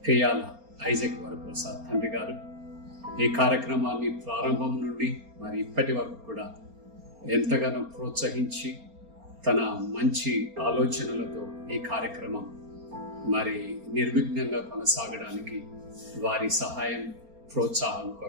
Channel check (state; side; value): late; left; 4.3 ms